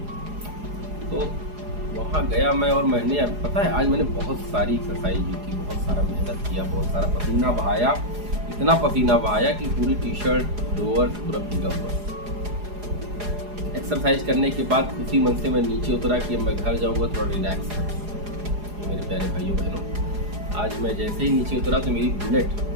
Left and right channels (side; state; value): left; late; 4.8 ms